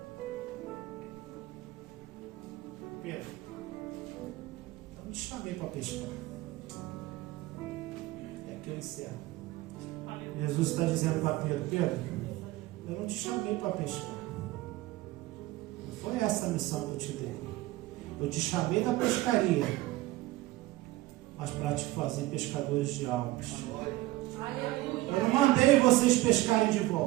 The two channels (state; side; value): quieter; left; 17.9 dB